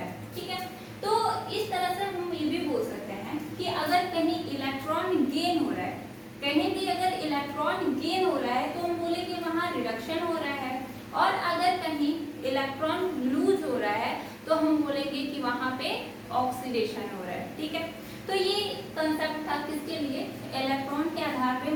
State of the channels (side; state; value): both; identical; correlation 1.00